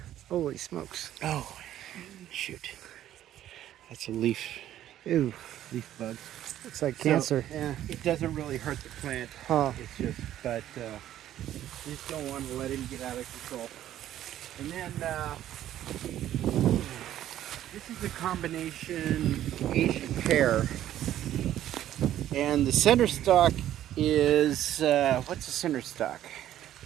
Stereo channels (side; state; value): left; quieter; 12.2 dB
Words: Holy smokes! Oh, shoot. That's a leaf Ew, bug. looks like cancer. So, yeah, it doesn't really hurt the plant. Huh? It's just, but you just don't want to let him get out of control. And then this is a combination Asian pear, and the center stalk is what's the center stalk?